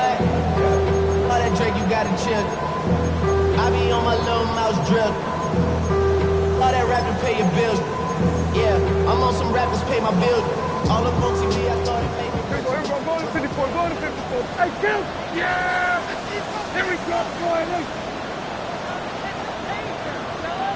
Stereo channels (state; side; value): identical; both; correlation 1.00